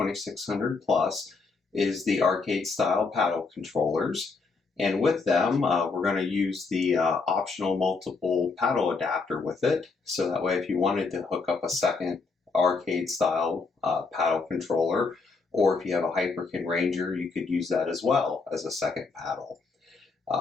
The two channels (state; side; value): quieter; right; 4.4 dB